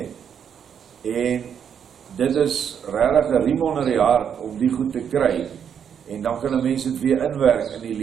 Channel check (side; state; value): left; quieter; 8.0 dB